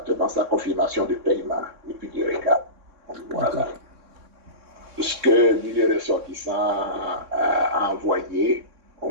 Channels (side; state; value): left; late; 3.6 ms